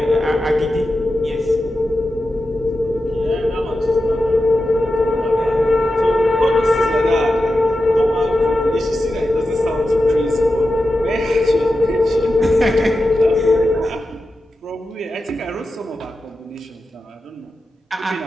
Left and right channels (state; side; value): normal; both; correlation 0.91